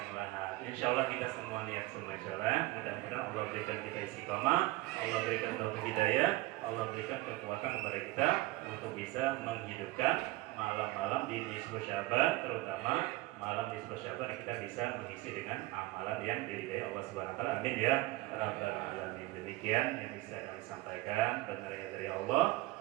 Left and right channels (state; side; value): quieter; left; 19.4 dB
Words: lahat. Insya Allah kita semua niat semua jalan. Mudah-mudahan Allah berikan kita istiqomah, Allah berikan taufik hidayah, Allah berikan kekuatan kepada kita untuk bisa menghidupkan malam-malam di nisfu Syaban, terutama malam nisfu Syaban yang kita bisa mengisi dengan amalan yang diridhai Allah Subhanahu Wa Taala. Amin ya rabbal alamin. Demikian yang bisa kami sampaikan, benarnya dari Allah.